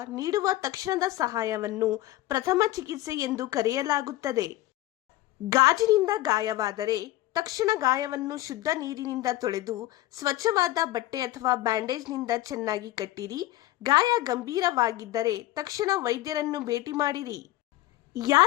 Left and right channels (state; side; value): quieter; right; 16.4 dB